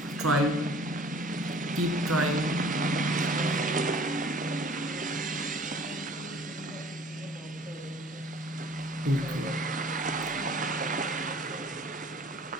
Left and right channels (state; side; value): normal; both; correlation 0.50